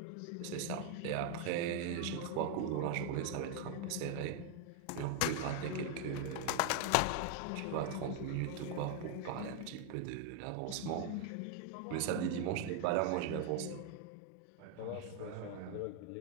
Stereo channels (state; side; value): different; both; correlation 0.00